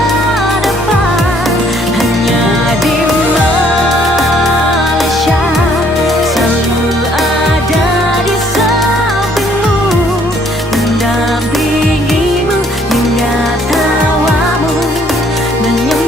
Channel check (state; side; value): normal; both; correlation 0.63